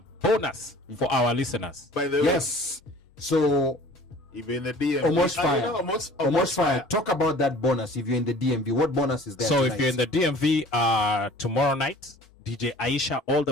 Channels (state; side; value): normal; both; correlation 0.48